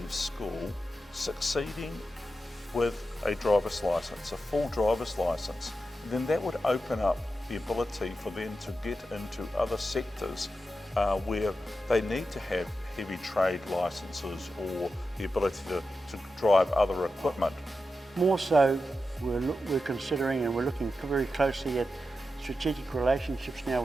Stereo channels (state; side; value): normal; both; correlation 0.90